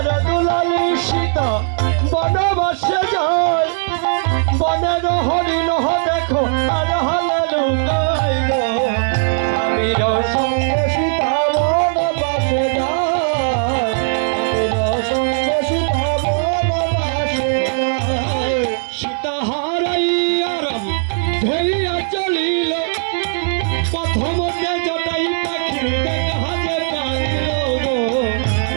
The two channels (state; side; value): silent; left; digital silence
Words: দুলালী সীতা বনবাসে যায় বনের হরিণ দেখো আর হলে লুকাই গো স্বামীর সঙ্গে সীতা বনবাসে যায় স্বামীর সঙ্গে সীতা বনবাসে যায় সীতা হারাইয়া রাম ধরিয়া চলিল প্রথম জটাই পাখি দেখা যে কাঁদিল গো